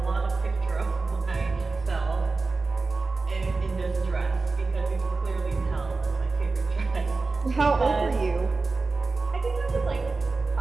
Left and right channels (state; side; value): quieter; left; 3.8 dB